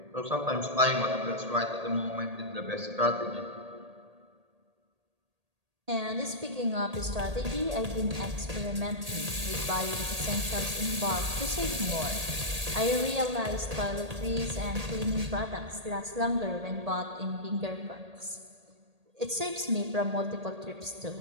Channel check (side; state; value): left; late; 1.8 ms